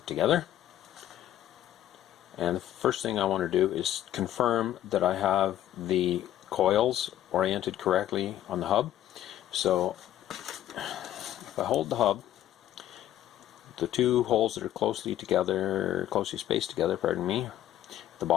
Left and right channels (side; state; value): right; quieter; 12.4 dB